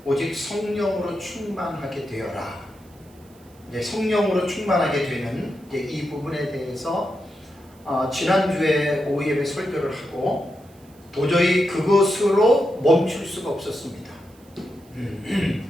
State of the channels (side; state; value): right; noise; hiss, 29 dB below the sound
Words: 오직 성령으로 충만하게 되어라. 이제 성령으로 충만하게 되는 이제 이 부분에 대해서 지난주에 오후 예배 설교를 하고 도저히 그것으로 멈출 수가 없었습니다.